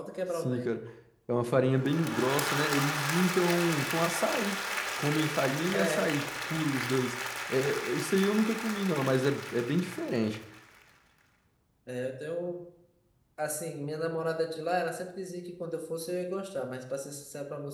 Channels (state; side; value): identical; both; correlation 1.00